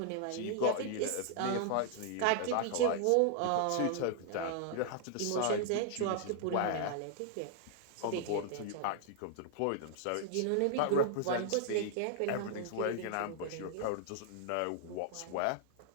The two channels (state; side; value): different; both; correlation 0.00